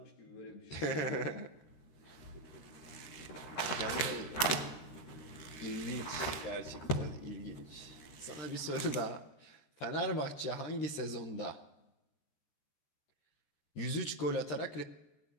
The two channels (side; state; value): right; late; 13 ms